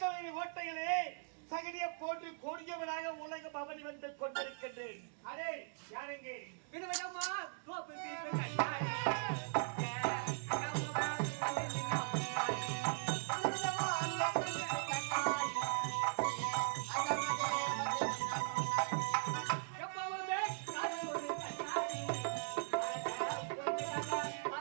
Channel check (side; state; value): left; silent; digital silence